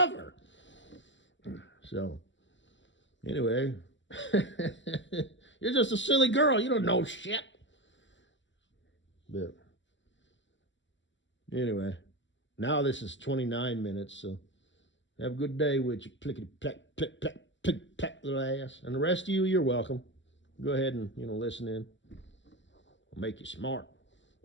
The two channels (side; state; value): right; late; 0.54 ms